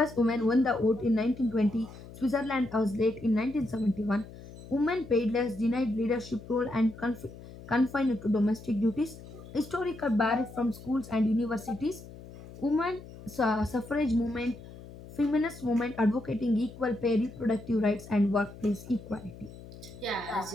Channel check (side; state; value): left; noise; hum, 16 dB below the sound